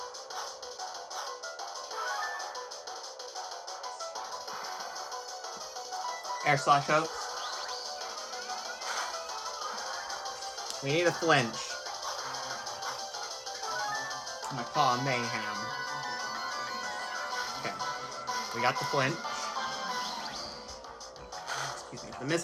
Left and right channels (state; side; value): identical; both; correlation 1.00